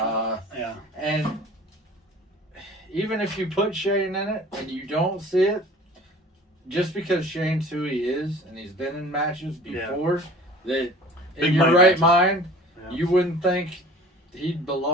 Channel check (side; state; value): both; normal; correlation 0.46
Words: And even if you put Shane in it and you don't see it, just because Shane's who he is and he's been in matches before, that in your right mind, you wouldn't think he